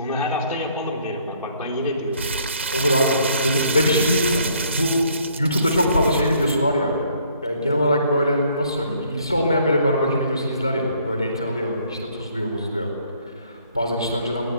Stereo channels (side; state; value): both; inverted; correlation -0.63